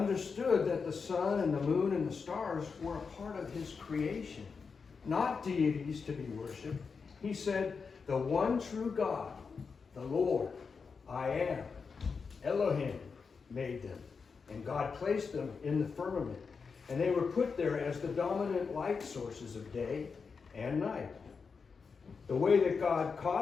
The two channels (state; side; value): quieter; right; 5.3 dB